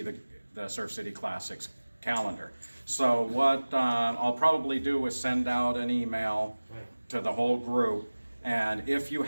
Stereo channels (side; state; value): both; inverted; correlation -1.00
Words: the Surf City Classics calendar. So what I'll probably do is send out an email to the whole group, and if you